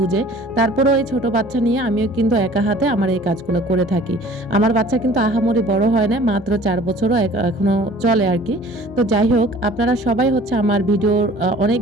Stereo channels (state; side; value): normal; both; correlation 0.49